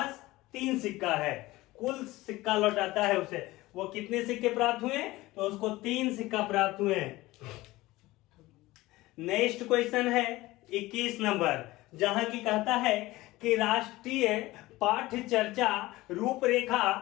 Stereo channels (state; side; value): quieter; right; 18.8 dB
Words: 3 सिक्का है। कुल सिक्का लौटाता है उसे, वो कितने सिक्के प्राप्त हुए, तो उसको 3 सिक्का प्राप्त हुए। नेक्स्ट क्वेश्चन है 21 नंबर, जहां की कहता है कि राष्ट्रीय पाठ्य चर्चा रूपरेखा